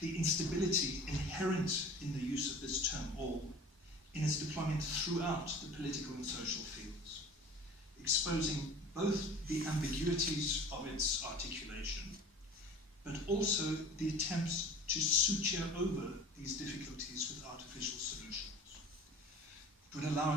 the instability inherent in the use of this term all in its deployment throughout the political and social fields, exposing both the ambiguities of its articulation, but also the attempts to suture over these difficulties with artificial solutions. It would allow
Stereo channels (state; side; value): normal; both; correlation 0.42